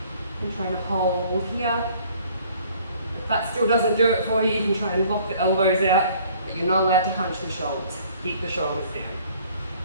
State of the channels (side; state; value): both; inverted; correlation -0.56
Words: And trying to hold here. If that still doesn't do it for you, you can try and lock the elbows out, but you're not allowed to hunch the shoulders. Keep the shoulders down.